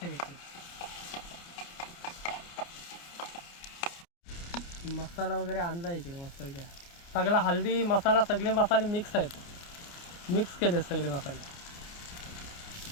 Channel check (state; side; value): late; right; 29 ms